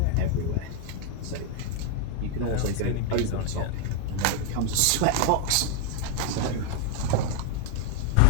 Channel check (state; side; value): different; both; correlation 0.01